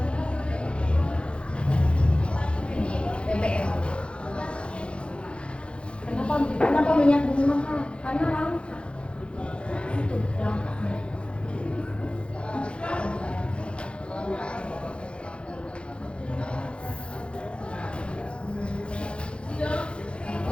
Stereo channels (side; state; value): right; late; 0.057 ms